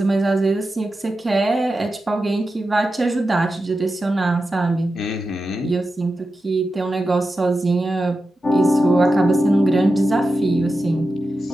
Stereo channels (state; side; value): normal; both; correlation 0.91